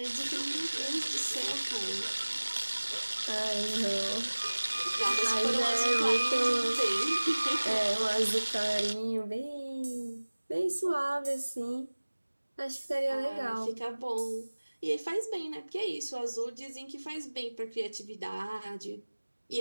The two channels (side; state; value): both; inverted; correlation -1.00